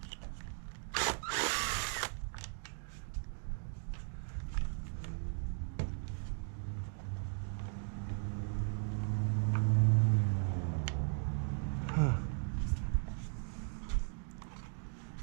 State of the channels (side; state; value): left; silent; 53 dB below the other